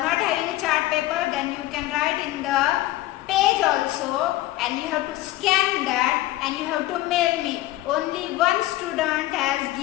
having a chart paper, then you can write in the page also, and you have to scan that and you have to mail me. Only one student has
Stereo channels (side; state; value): right; quieter; 16.4 dB